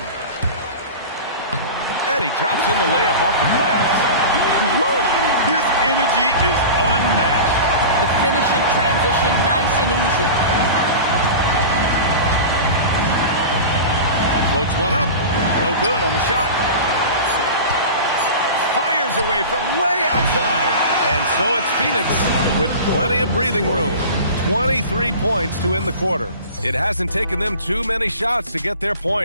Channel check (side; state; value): both; inverted; correlation -0.33